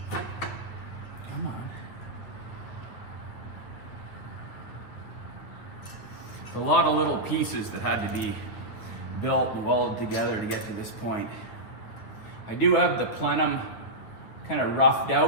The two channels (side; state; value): right; late; 9.3 ms